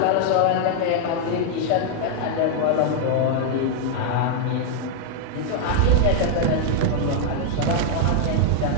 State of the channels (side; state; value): both; different; correlation -0.01